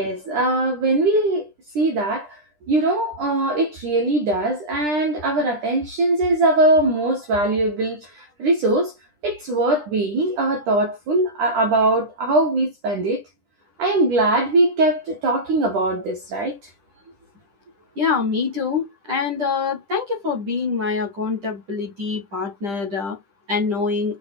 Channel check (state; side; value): late; left; 10 ms